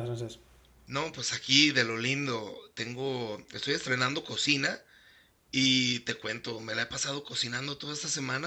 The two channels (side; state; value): both; identical; correlation 1.00